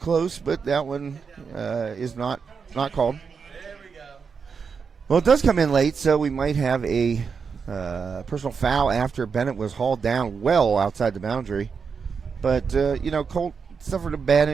but that one is not called. Well, it does come in late, so we might have a personal foul after Bennett was hauled down well outside the boundary. But, Colt suffered a bad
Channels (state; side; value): quieter; left; 5.8 dB